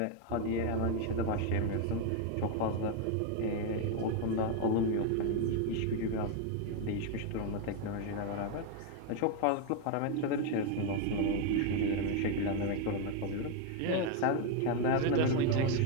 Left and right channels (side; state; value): both; different; correlation 0.01